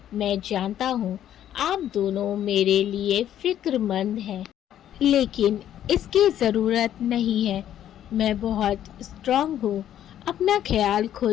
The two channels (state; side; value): quieter; right; 11.1 dB